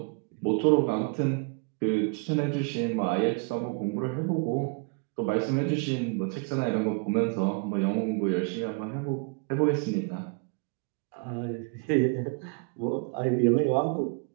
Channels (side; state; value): left; quieter; 34.6 dB